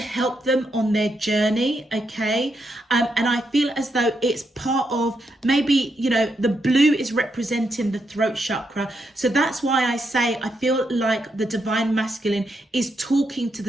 them on their journey, okay? And I feel as though it's part of, maybe, you know, the blue is representing the throat chakra. So that's why I say I feel like the divine masculine is talking to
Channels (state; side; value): normal; both; correlation 0.81